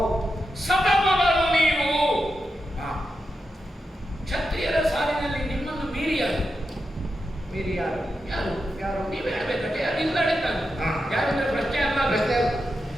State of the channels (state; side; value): normal; both; correlation 0.88